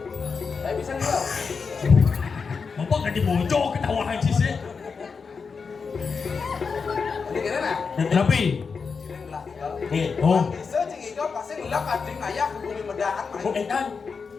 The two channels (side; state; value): right; quieter; 5.3 dB